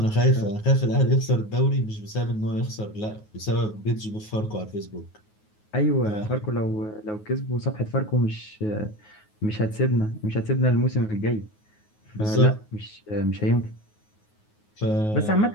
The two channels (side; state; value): right; late; 9.4 ms